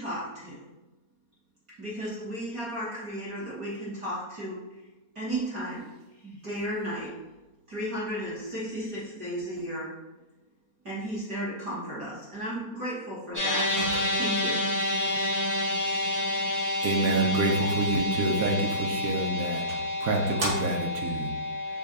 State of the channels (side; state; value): left; late; 4.2 ms